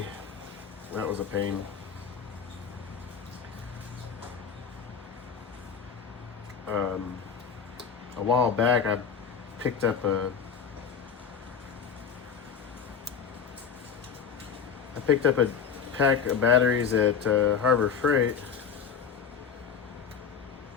That was a pain. A while back, I picked up a pack of batteries at Harbor Freight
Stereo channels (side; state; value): right; quieter; 6.8 dB